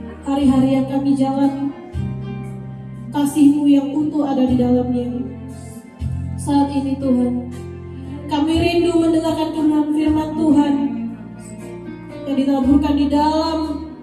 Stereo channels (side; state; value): both; identical; correlation 1.00